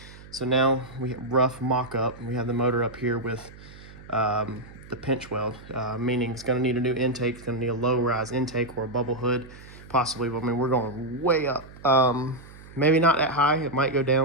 So now we have rough mock-up. We have the motor up here with the pinch weld, meaning it's gonna need a new intake. It's gonna need a low-rise intake or a bubble hood, possibly. But I mean, we're going way up. Maybe not that high. It might go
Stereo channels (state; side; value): noise; right; hum, 19 dB below the sound